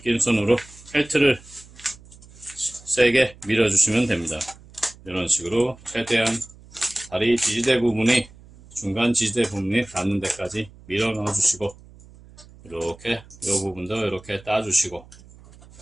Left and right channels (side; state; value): right; noise; hum, 22 dB below the sound